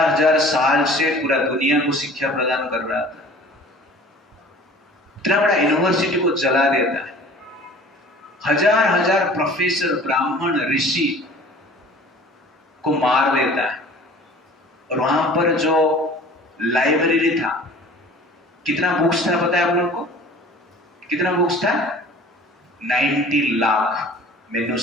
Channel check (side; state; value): both; normal; correlation 0.46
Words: साल से पूरा दुनिया को शिक्षा प्रदान कर रहा था, इतना बड़ा यूनिवर्सिटी को जला देता है। हजार प्रोफेसर, ब्राह्मण, ऋषि को मार देता है। और वहां पर जो लाइब्रेरी था, कितना बुक्स था पता है आप लोग को? कितना बुक्स था? 90 लाख